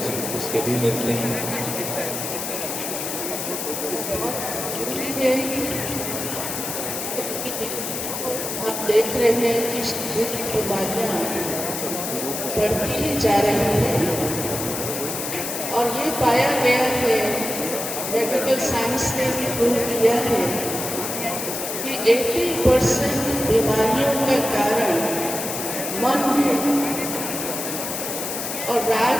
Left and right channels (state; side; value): noise; left; hiss, 4 dB below the sound